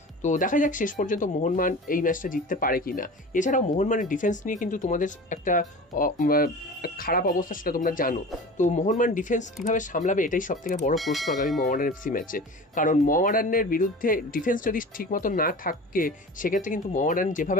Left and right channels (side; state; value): both; normal; correlation 0.36